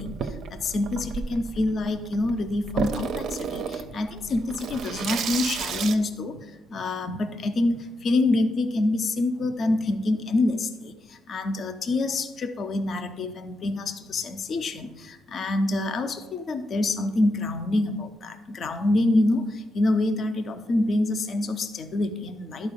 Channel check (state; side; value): normal; both; correlation 0.84